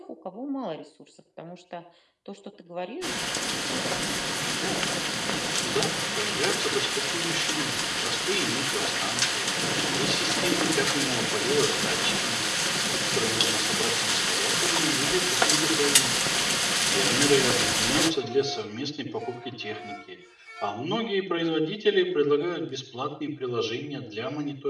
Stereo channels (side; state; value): both; identical; correlation 1.00